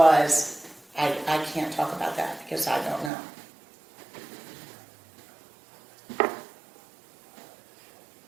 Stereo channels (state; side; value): drops out; left; at 3.1 s